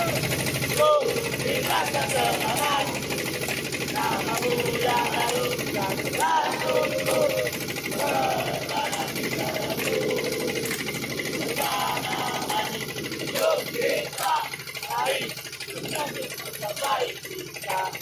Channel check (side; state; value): both; identical; correlation 1.00